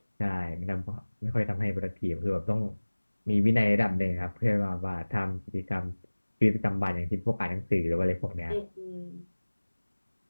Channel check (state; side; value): inverted; both; correlation -1.00